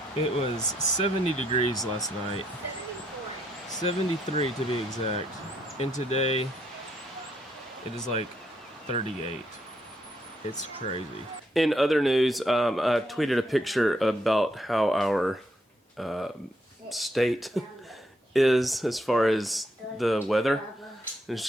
it was 70 degrees last night. 73 to be exact. And today, it is like 38. It's crazy. In other news, I tweeted a picture about how our state is as far as the weather. And it's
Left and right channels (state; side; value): normal; both; correlation 0.75